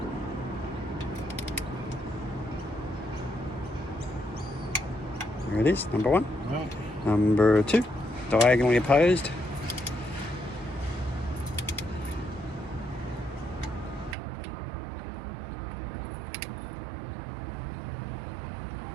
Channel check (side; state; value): left; drops out; at 14.2 s